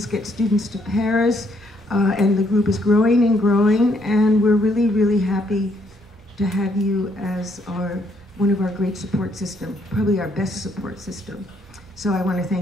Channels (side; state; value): both; normal; correlation 0.71